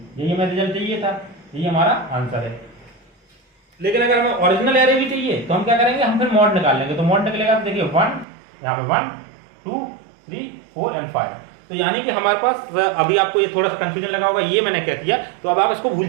यही हमें रिजल्ट चाहिए था, यही हमारा आंसर है। लेकिन अगर हमें ओरिजिनल एरे भी चाहिए तो हम क्या करेंगे, हम फिर मॉड निकाल लेंगे। तो मॉड निकलेगा तो देखिए 1 यहाँ पे 1 2 3 4 एंड 5। तो यानी कि हमारे पास, अभी आपको ये थोड़ा सा कंफ्यूजन लगा होगा, ये मैंने कह दिया तो अब आप इसको भूल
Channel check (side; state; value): left; drops out; at 8.2 s